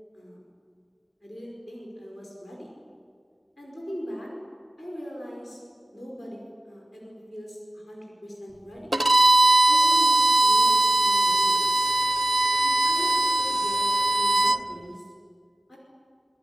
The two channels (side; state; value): both; normal; correlation 0.95